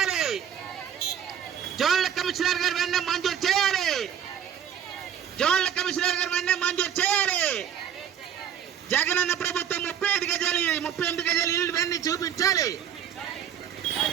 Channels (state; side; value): quieter; left; 9.1 dB